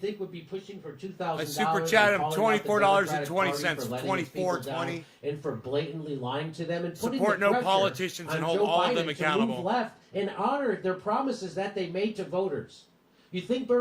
would be pushing for $2,000. I super chat him $24.20, 24.20, and for blatantly lying to them and putting support the no pressure politicians and on hold Joe all of Biden them to accountable. move left and honor their promises that they made to voters. You think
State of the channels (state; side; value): identical; both; correlation 1.00